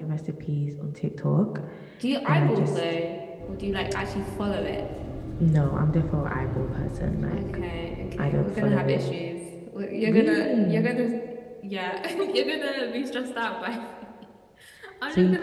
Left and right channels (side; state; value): both; identical; correlation 1.00